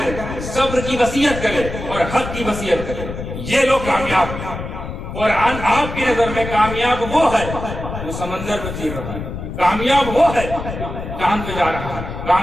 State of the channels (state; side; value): noise; left; rumble, 8 dB below the sound